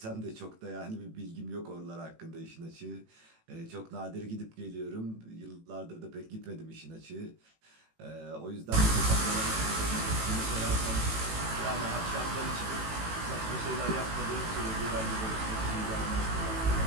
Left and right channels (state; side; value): late; left; 18 ms